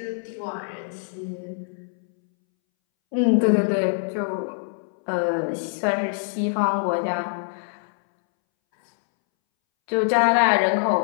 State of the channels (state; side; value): silent; right; 63 dB below the other